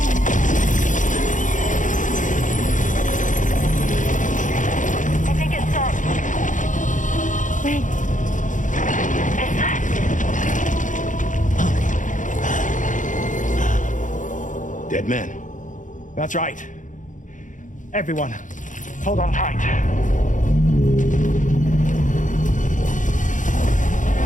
I think it's done. Wait. Is that? Dead man. That's right. Everyone, hold on tight.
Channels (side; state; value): right; late; 0.37 ms